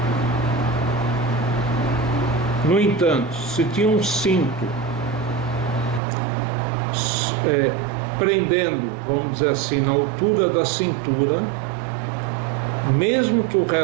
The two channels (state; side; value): drops out; left; at 6.0 s